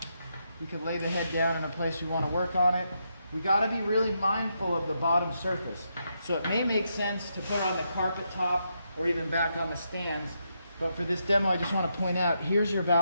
we could lay the head down in a place we want to work on it. We got to be really mindful of the bottom surface. So it may make sense to put it on the carpet top or even back on the stands. But for this demo, I just want to point out, here's your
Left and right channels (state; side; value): inverted; both; correlation -0.81